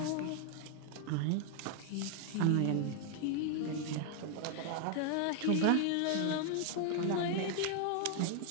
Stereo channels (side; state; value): both; different; correlation 0.00